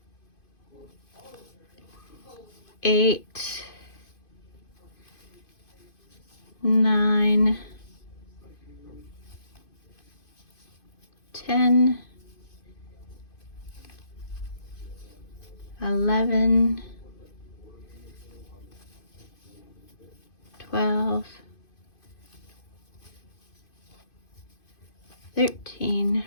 8, 9, 10, 11, 12, 13,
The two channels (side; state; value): right; late; 2.5 ms